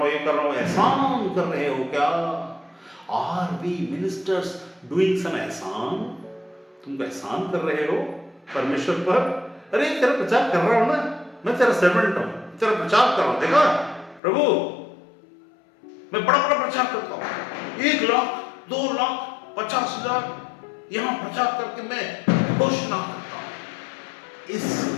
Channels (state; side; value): drops out; right; at 14.2 s